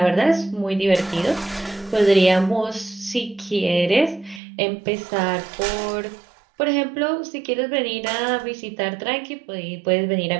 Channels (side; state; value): left; drops out; at 4.4 s